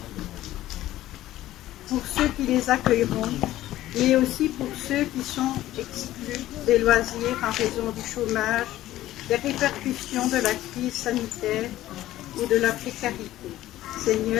Pour ceux qui les accueilleront, mais aussi pour ceux qui sont exclus des loisirs en raison du chômage, des répercussions de la crise sanitaire ou de la précarité.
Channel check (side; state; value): right; quieter; 14.7 dB